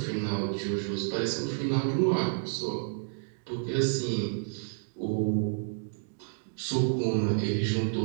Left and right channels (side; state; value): left; silent; digital silence